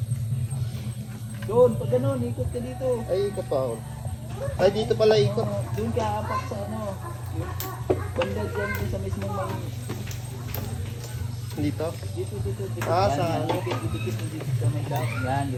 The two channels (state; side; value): identical; both; correlation 1.00